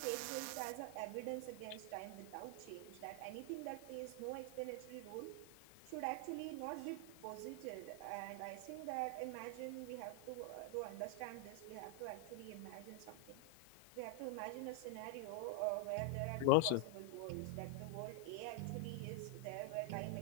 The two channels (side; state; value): both; different; correlation 0.00